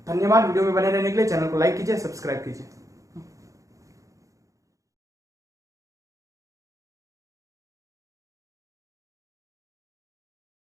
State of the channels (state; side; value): late; left; 0.16 ms